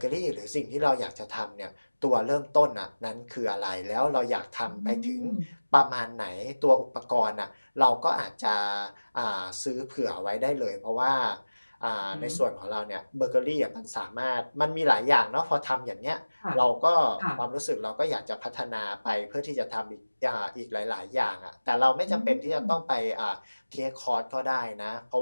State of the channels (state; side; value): inverted; both; correlation -1.00